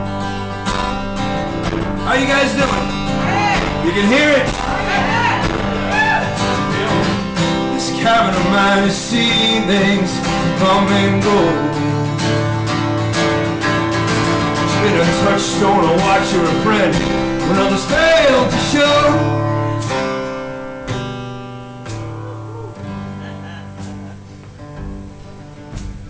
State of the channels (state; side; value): identical; both; correlation 1.00